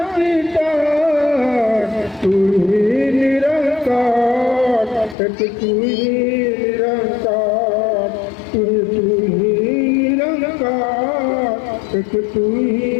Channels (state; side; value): drops out; right; at 5.2 s